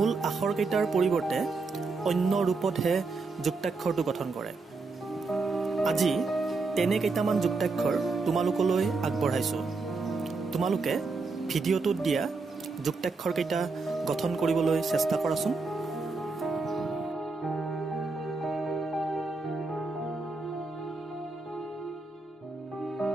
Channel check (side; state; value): left; quieter; 3.9 dB